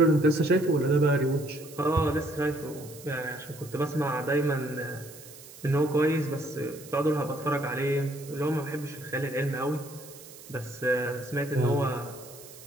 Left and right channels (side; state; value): right; noise; hiss, 18 dB below the sound